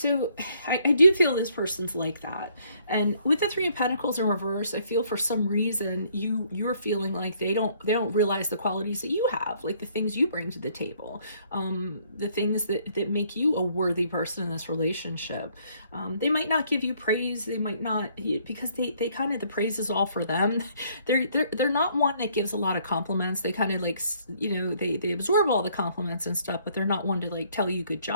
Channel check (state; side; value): inverted; both; correlation -0.65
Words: I do feel this person's like that, and with the Three of Pentacles in reverse, I feel for some reason you're feeling like they don't realize the qualities that you have, like the things you bring to the table, the things that make you a worthy person in this relationship. They might not give you praise, they might not, because they kind of, the praise is all for them. They're not one that gives a lot of compliments. They kind of like, they absorb all the compliments and stuff, but they're not one to like tell you good